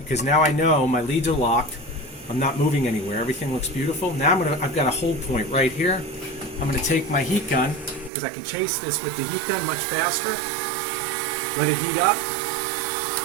now I know my leads are locked. I'm not moving anywhere. Everything looks beautiful. Now I've got a hold point right here. I'm going to take my heat gun because I can chase this with the heat gun much faster. Let it heat up.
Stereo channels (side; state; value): left; drops out; at 8.1 s